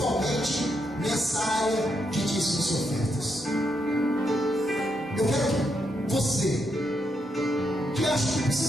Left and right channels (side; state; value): both; normal; correlation 0.80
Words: nessa área de dízimos e ofertas. Eu quero que você, que acha que